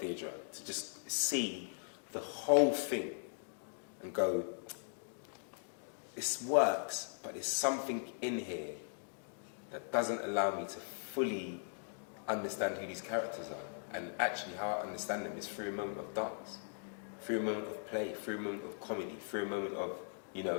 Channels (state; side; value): silent; right; digital silence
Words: to just see the whole thing and go, this works, but there's something in here that doesn't allow me to fully understand who these characters are. And actually how I understand them is through a moment of dance, through a moment of play, through a moment of comedy, through a moment of,